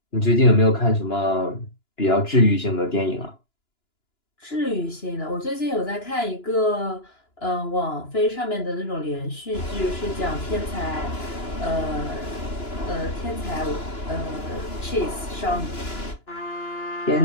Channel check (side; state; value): right; late; 2.9 ms